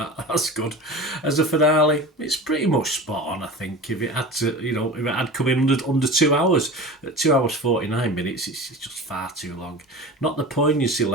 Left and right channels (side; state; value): both; normal; correlation 0.34